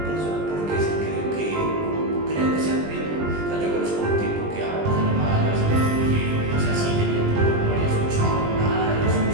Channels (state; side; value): late; left; 20 ms